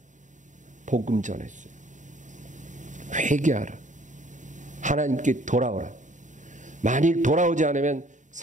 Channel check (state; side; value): late; left; 0.36 ms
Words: 복음 전했어요. 회개하라. 하나님께 돌아오라. 만일 돌아오지 않으면